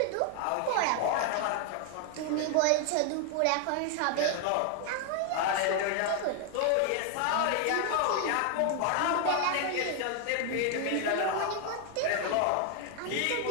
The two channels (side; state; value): both; different; correlation 0.00